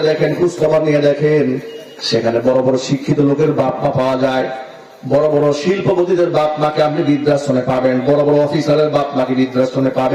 দেখেন, খোঁজ খবর নিয়ে দেখেন, সেখানে বড় বড় শিক্ষিত লোকের বাপ মা পাওয়া যায়, বড় বড় শিল্পপতিদের বাপ মাকে আপনি বৃদ্ধাশ্রমে পাবেন, বড় বড় অফিসারের বাপ মাকে বৃদ্ধাশ্রমে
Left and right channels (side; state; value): both; identical; correlation 1.00